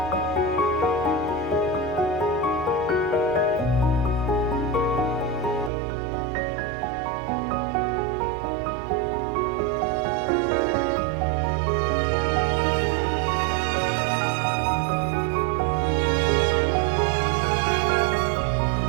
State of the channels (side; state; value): left; drops out; at 5.7 s